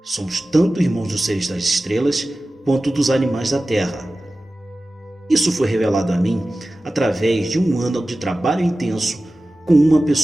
Somos tanto irmãos dos seres das estrelas quanto dos animais da Terra. Isso foi revelado a mim através de um ano de trabalho intenso com uma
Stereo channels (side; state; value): both; normal; correlation 0.95